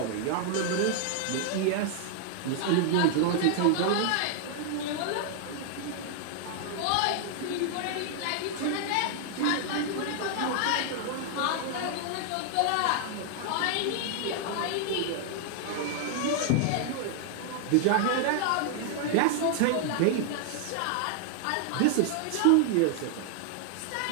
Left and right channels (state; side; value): different; both; correlation 0.00